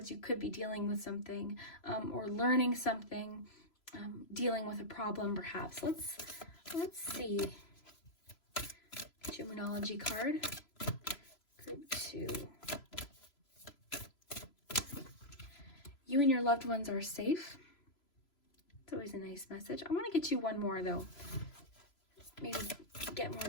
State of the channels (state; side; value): late; right; 3.0 ms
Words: you could be dealing with something or learning something, dealing with a problem perhaps. Let's see. Get your Moonology card. Group two. You and your loved ones are safe. It's always a nice message. I want to get you one more though. Maybe get more